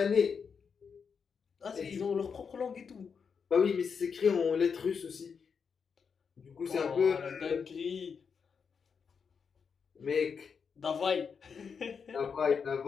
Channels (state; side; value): quieter; right; 6.1 dB